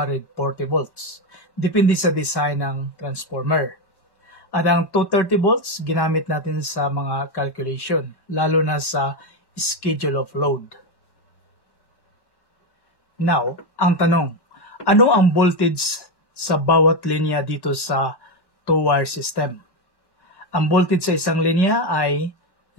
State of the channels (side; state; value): right; late; 1.1 ms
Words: volts. Depende sa design ng transformer. At ang 230 volts, ginamit natin sa mga calculation, lalo na sa schedule of load. Now, ang tanong, ano ang voltage sa bawat linya dito sa two-wire system? Ang voltage sa isang linya ay